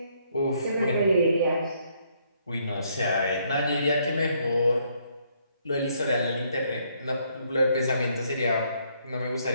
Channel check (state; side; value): inverted; both; correlation -0.70